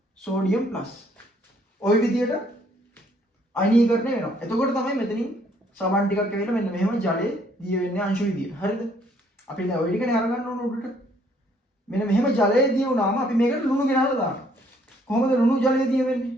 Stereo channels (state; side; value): normal; both; correlation 0.65